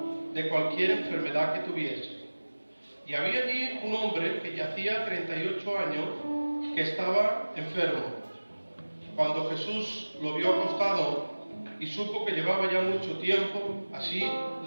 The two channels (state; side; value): inverted; both; correlation -1.00